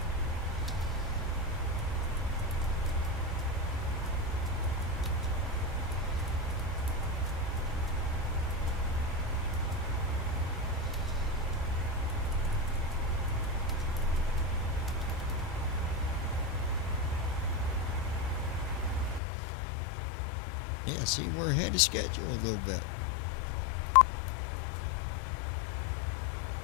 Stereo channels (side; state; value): right; drops out; at 19.2 s